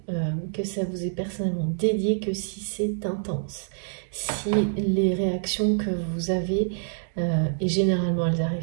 que ça vous est personnellement dédié que si c'est intense. Si les réactions que vous avez, et généralement elles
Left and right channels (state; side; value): silent; left; digital silence